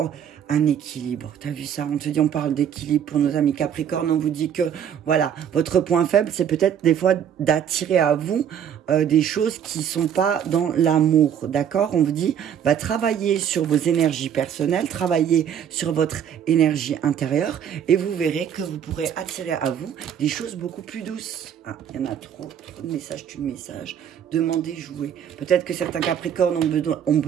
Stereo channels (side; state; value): left; quieter; 8.8 dB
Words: un équilibre, t'as vu ça? On te dit, on parle d'équilibre pour nos amis Capricorne, on vous dit que, voilà, votre point faible, c'est peut-être des fois d'attirer à vous des choses qui sont pas dans l'amour, d'accord? On vous dit, bah, travaillez sur vos énergies personnelles, travaillez sur votre énergie intérieure, et vous verrez que vous pourrez attirer à vous des choses beaucoup plus douces. Ah, il y en a trop de messages, tu de messages. Demandez, jouer. Peut-être que certains Capricornes ont